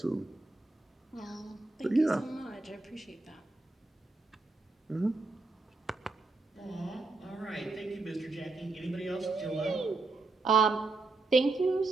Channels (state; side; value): quieter; left; 3.3 dB